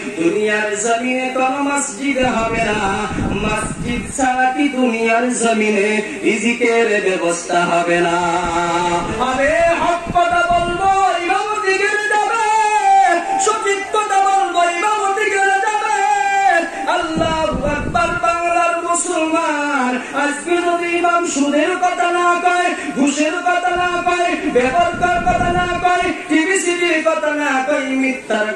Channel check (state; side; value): identical; both; correlation 1.00